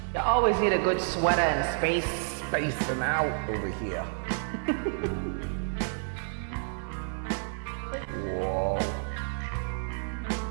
You always need a good sweater and space. Spacing out over here. Whoa.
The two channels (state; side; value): silent; left; digital silence